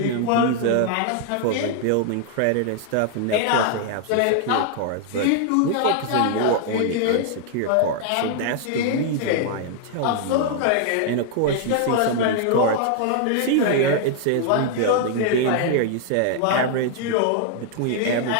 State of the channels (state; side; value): different; both; correlation 0.00